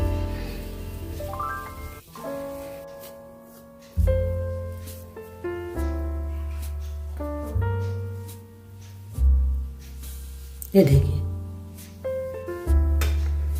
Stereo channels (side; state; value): both; identical; correlation 1.00